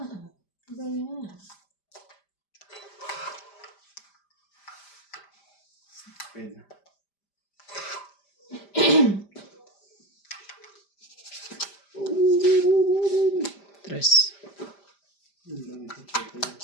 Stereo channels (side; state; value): right; late; 5.0 ms